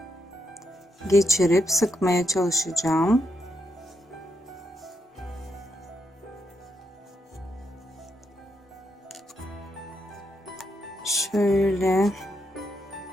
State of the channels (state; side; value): normal; both; correlation 0.81